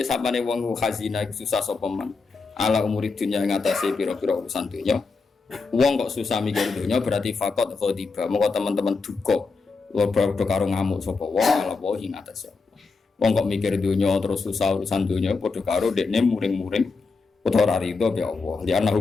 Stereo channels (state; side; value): quieter; right; 4.3 dB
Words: wong khazina susah sapa man. Ala umuri dunya ngatasi pira-pira urusan dunya. Wong kok susah mikir dunya berarti fakot khodiba. Moko teman-teman duka. Padha karo ngamuk sapa wong ala wae ngatasi. Wong kok mikir dunya terus susah urusan dunya padha karo dekne muring-muring utawa rido ya Allah. Li